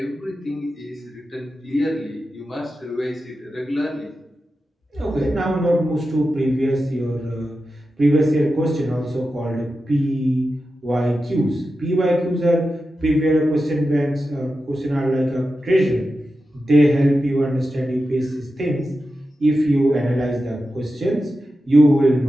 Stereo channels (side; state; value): both; normal; correlation 0.91